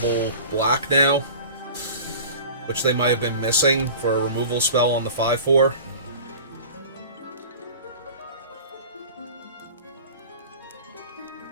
black now, which they might have been missing for a removal spell on the 5/4.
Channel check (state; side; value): inverted; both; correlation -0.38